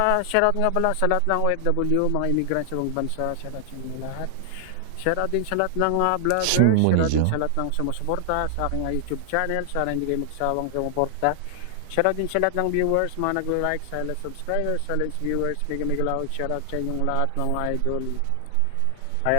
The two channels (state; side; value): different; both; correlation 0.00